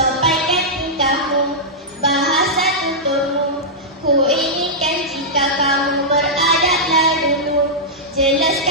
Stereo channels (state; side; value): normal; both; correlation -0.10